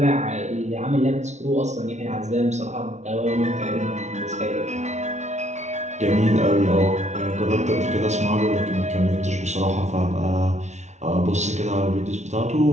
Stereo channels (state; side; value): late; left; 0.33 ms